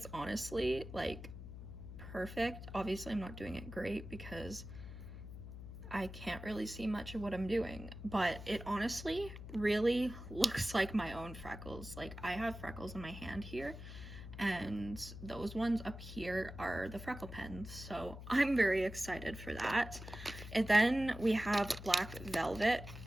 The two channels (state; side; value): noise; left; hum, 11 dB below the sound